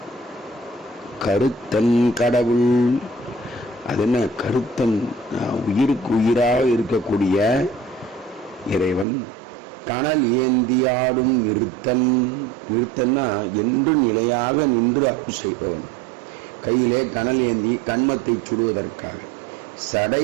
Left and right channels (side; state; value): left; drops out; at 9.1 s